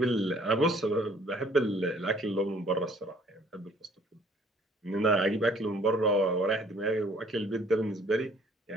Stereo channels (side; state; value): both; normal; correlation 0.57